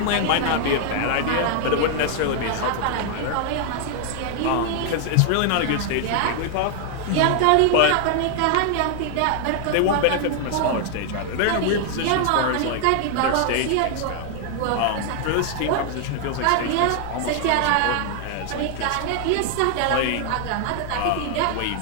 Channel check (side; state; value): both; different; correlation 0.00